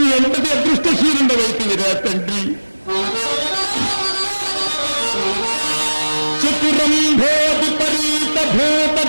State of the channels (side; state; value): both; inverted; correlation -1.00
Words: ఎంతటి అదృష్టశీలుండవైతివిరా తండ్రి. చతురంభోధిపరీత భూత